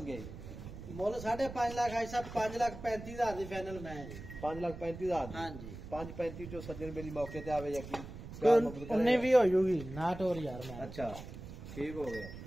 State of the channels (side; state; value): right; noise; rumble, 12 dB below the sound